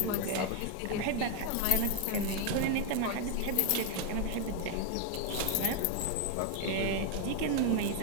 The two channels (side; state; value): both; different; correlation 0.01